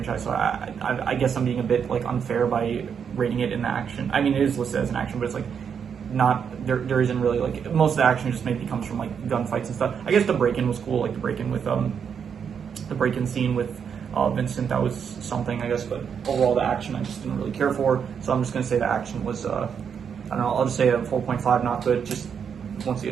so I guess I'm being a bit like unfair by rating it in the action. I mean, it is listed as an action, but it's like not there isn't really like most of the action just maybe comes from like gunfights and stuff. I guess the break-in was cool, like the break-in scene with Vincent, that was something, I guess, but overall the action I just didn't really care for. So I'm just gonna say the action was I don't know, I'll just say a 4.5, not good. Just once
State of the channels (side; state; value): left; quieter; 7.2 dB